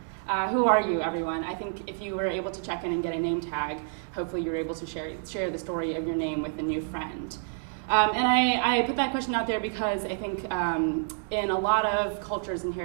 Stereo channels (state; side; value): silent; left; digital silence